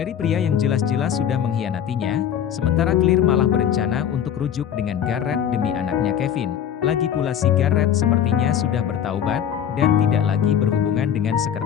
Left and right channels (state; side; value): quieter; right; 9.2 dB